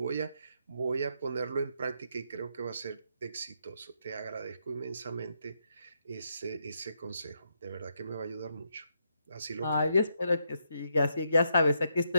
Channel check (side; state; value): both; inverted; correlation -0.79